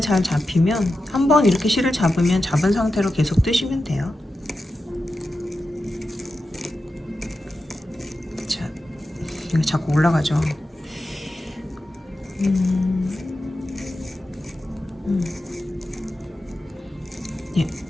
잘 잡히면 한번 이렇게 실을 잡으면 잡은 상태로 계속 뜨시면 돼요. 자, 이거 자꾸 올라가죠. 예,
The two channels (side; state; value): both; normal; correlation 0.91